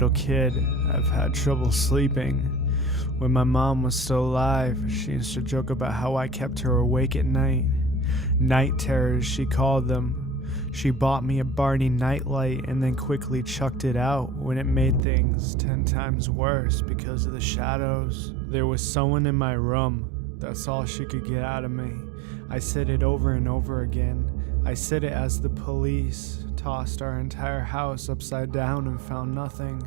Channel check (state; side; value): drops out; left; at 15.0 s